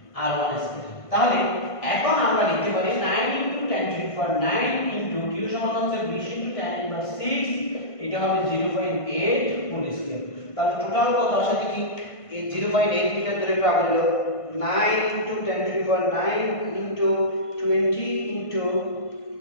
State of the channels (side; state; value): right; late; 1.5 ms